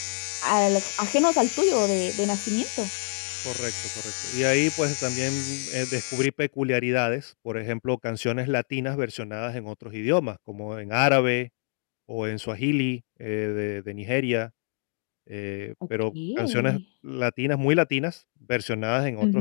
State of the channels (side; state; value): right; silent; digital silence